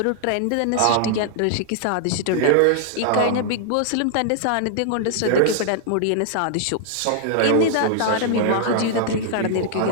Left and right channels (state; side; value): different; both; correlation -0.01